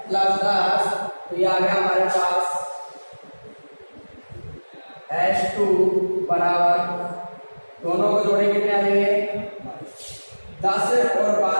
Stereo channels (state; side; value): inverted; both; correlation -1.00